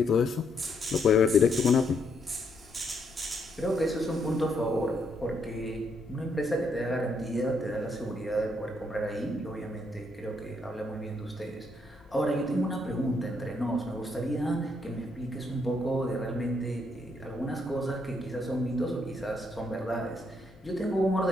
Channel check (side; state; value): both; normal; correlation 0.74